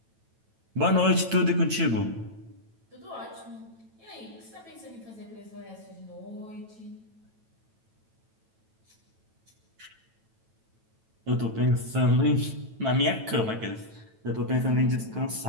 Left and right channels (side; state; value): left; late; 9.1 ms